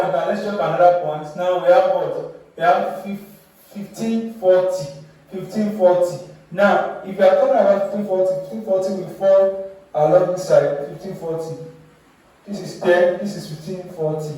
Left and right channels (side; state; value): both; identical; correlation 1.00